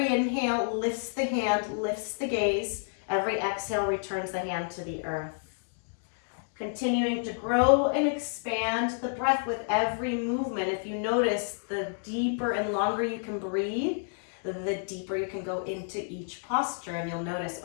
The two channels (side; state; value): right; silent; digital silence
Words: inhale lifts the hand, lifts the gaze. Every exhale returns the hand to the earth. Continuing to grow and expand the breath with every movement. If you notice, the deeper and longer you can breathe, the deeper you can go into each posture. And you'll notice,